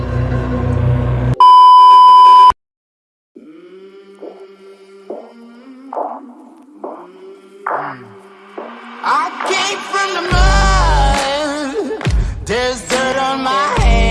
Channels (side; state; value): both; identical; correlation 1.00